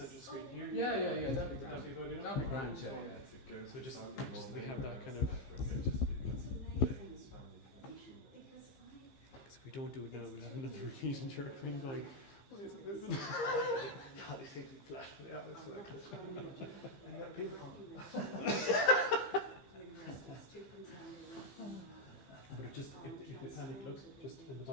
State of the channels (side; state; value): right; late; 15 ms